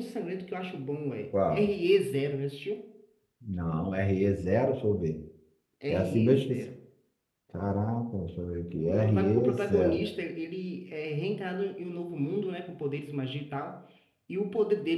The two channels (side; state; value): both; identical; correlation 1.00